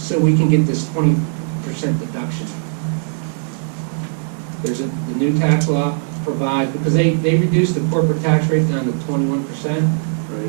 we can get this 20% deduction. There's the new tax law provides, because they reduced the corporate tax rate down to 21%.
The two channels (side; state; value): left; silent; digital silence